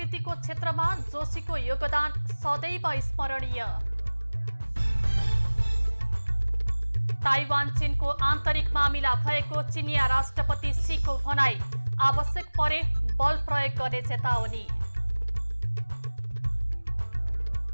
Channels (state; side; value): inverted; both; correlation -1.00